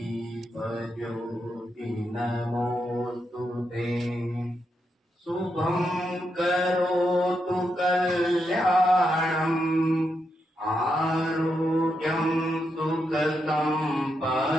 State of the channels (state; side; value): normal; both; correlation 0.83